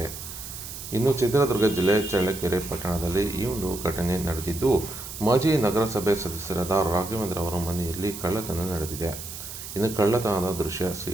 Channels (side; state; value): right; noise; hiss, 10 dB below the sound